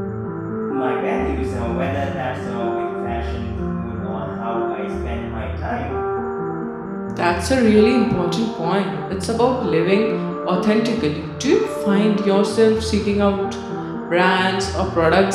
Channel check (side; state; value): both; identical; correlation 1.00